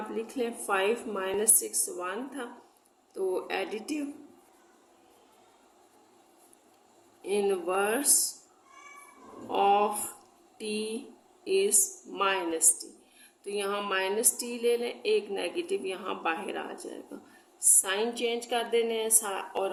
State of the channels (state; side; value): identical; both; correlation 1.00